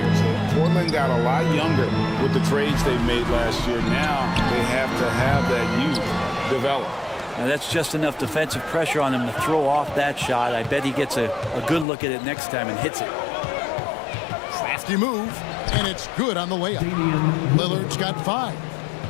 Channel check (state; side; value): drops out; right; at 11.9 s